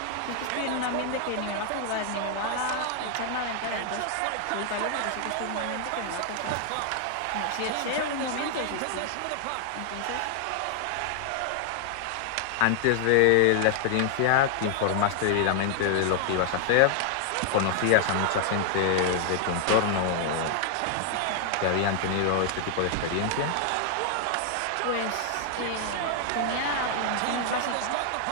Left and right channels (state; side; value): different; both; correlation 0.00